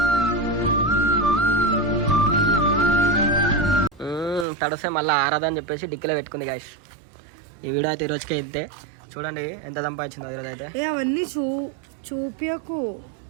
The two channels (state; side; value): drops out; left; at 4.5 s